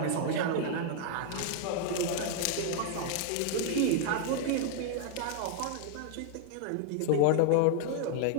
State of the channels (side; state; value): both; different; correlation -0.01